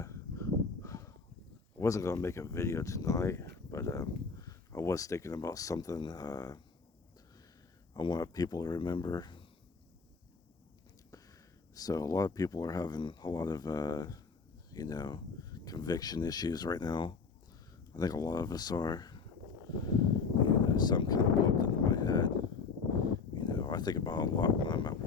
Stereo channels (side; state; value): right; quieter; 5.0 dB